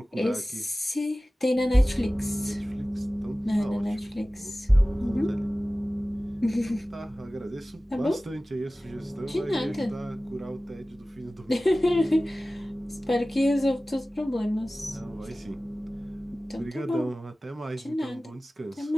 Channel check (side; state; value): both; normal; correlation 0.97